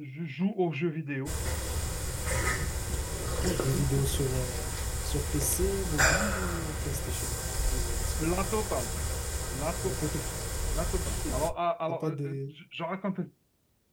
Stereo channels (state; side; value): identical; both; correlation 1.00